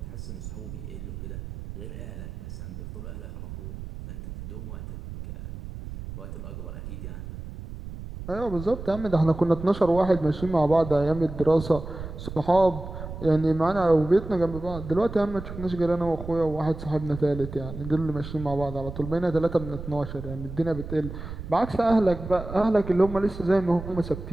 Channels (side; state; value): right; noise; rumble, 10 dB below the sound